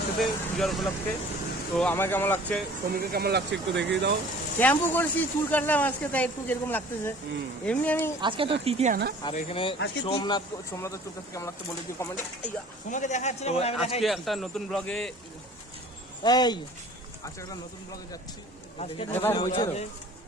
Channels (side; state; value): both; normal; correlation 0.48